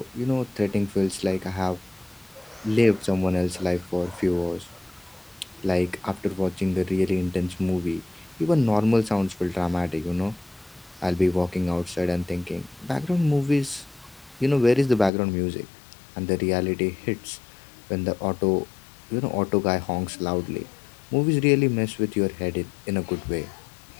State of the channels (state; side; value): drops out; right; at 15.1 s